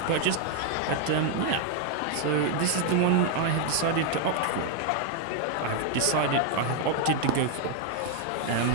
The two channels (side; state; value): both; different; correlation 0.00